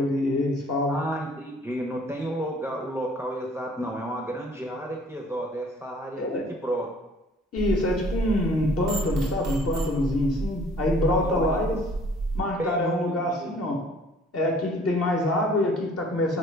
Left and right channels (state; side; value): normal; both; correlation 0.55